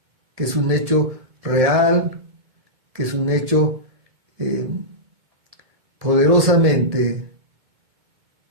que es un hecho real, que es un hecho poderosamente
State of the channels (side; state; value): left; late; 1.8 ms